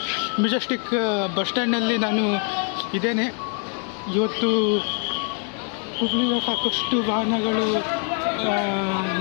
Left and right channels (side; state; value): right; quieter; 39.7 dB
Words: Majestic bus ಸ್ಟ್ಯಾಂಡ್ನಲ್ಲಿ ನಾನು ಇದ್ದೇನೆ. ಇವತ್ತು ಹುಬ್ಳಿಯ ಸಾಕಷ್ಟು ವಾಹನಗಳು